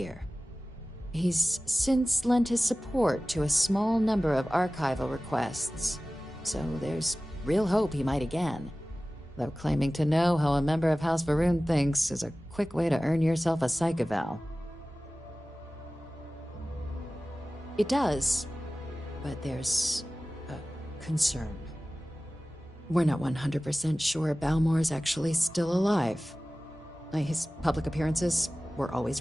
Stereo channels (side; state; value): both; normal; correlation 0.97